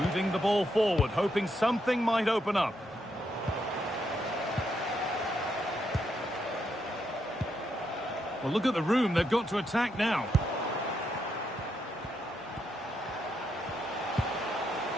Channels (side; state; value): both; normal; correlation 0.79